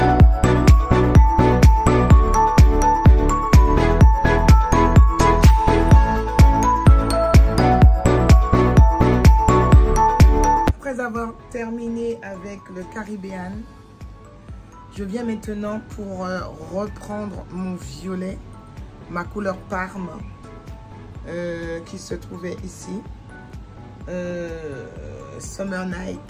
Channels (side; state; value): both; identical; correlation 1.00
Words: Après avoir terminé avec le caribéen, je viens maintenant pour reprendre mon violet, ma couleur Parme, qui se trouvait ici. Summer